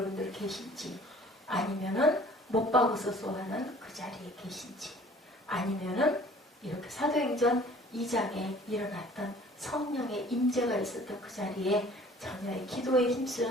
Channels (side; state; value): both; normal; correlation 0.51